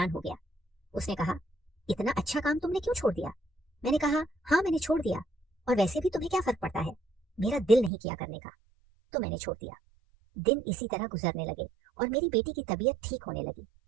हो गया। उसने कहा, इतना अच्छा काम तुमने क्यों छोड़ दिया? मैंने कहा, हाँ मैंने छोड़ दिया, और वैसे भी तुम्हें क्या फर्क पड़ता है, मेरा दिल नहीं किया करने का, तो मैंने छोड़ दिया। दिन इसी तरह गुजरने लगे और मेरी बेटी की तबीयत ठीक होने लगी।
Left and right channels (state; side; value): drops out; left; at 7.9 s